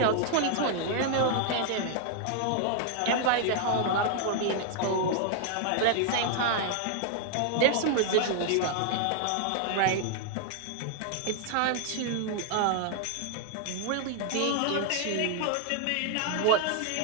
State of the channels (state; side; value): different; both; correlation 0.00